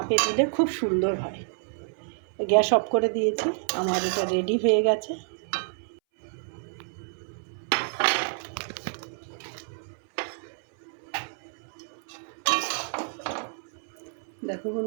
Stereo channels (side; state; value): left; silent; 59 dB below the other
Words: দিলে খুব সুন্দর হয়। গ্যাস অফ করে দিয়েছি, আমার এটা রেডি হয়ে গেছে। দেখো